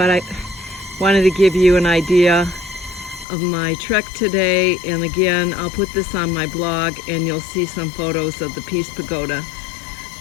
I wanted to give you an idea of my trek today. And again, I'll put this on my blog and you'll see some photos of the Peace Pagoda.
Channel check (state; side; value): drops out; right; at 3.2 s